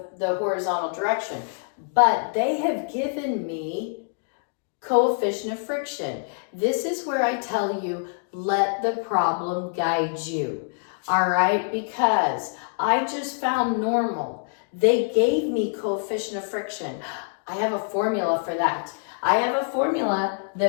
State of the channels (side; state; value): right; silent; digital silence